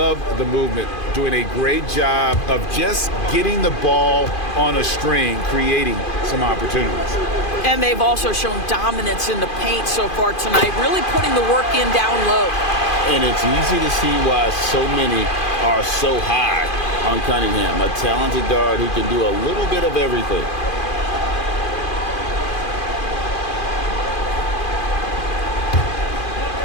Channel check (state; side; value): late; right; 2.5 ms